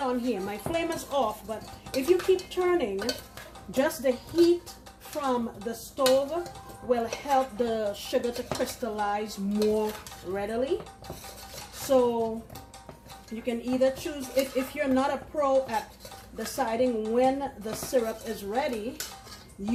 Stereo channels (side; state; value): both; identical; correlation 1.00